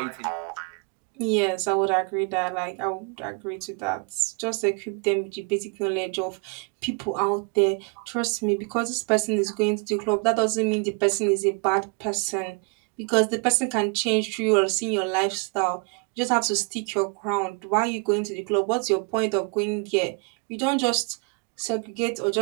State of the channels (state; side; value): quieter; left; 34.3 dB